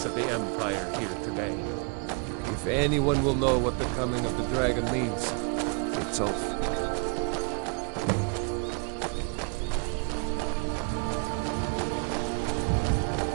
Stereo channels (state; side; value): quieter; left; 37.9 dB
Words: of the Empire here today. If anyone will know what the coming of the dragon means, it's Ulf.